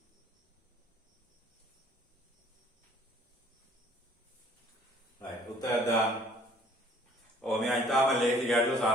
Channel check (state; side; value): normal; both; correlation 0.56